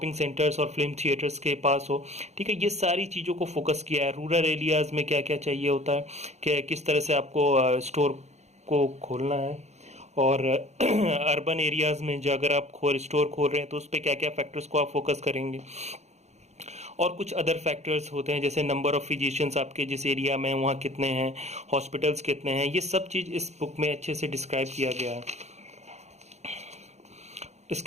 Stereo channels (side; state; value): left; late; 0.32 ms